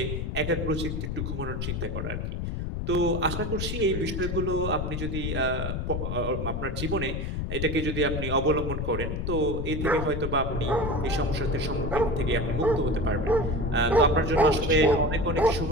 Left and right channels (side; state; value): left; noise; rumble, 3 dB below the sound